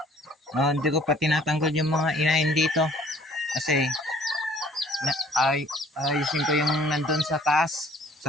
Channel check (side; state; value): both; normal; correlation 0.56